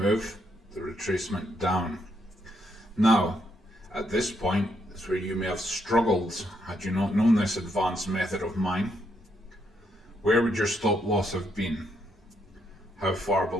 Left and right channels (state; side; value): normal; both; correlation 0.76